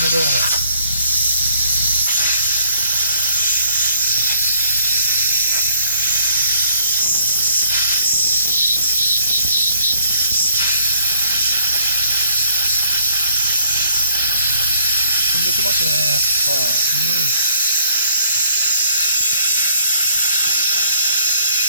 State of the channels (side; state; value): both; inverted; correlation -0.62